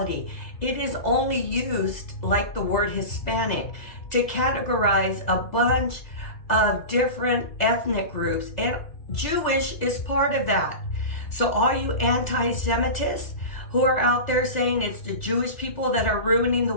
It is only used, like the word Hispanic, to categorize a bunch of different ethnic groups, and Jewish is part of that. So all you anti-Semitists who are out there saying it's the Jewish people that are ruining the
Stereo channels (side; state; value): right; late; 2.0 ms